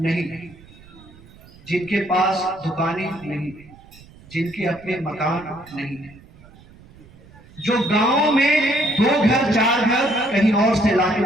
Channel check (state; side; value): noise; right; rumble, 23 dB below the sound